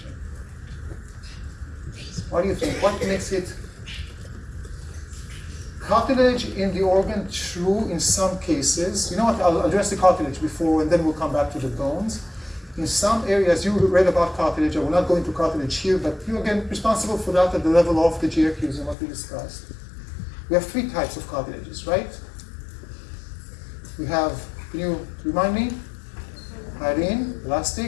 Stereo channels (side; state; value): right; drops out; at 18.9 s